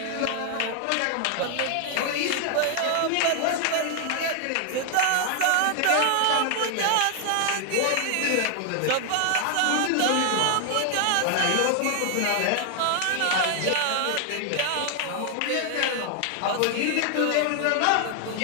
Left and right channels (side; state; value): both; different; correlation 0.00